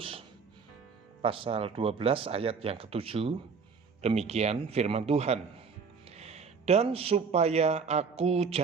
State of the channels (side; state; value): left; quieter; 5.4 dB